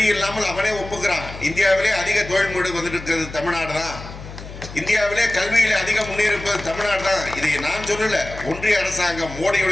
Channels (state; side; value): noise; left; hum, 13 dB below the sound